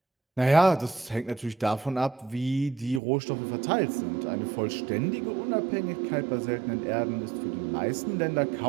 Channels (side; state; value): left; drops out; at 3.0 s